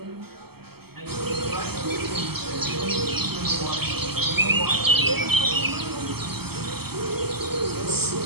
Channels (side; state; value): left; late; 0.96 ms